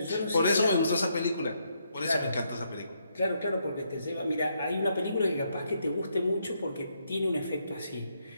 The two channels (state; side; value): inverted; both; correlation -0.76